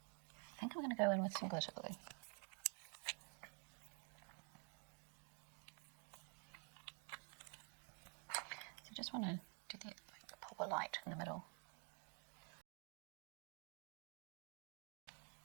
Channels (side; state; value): left; quieter; 39.1 dB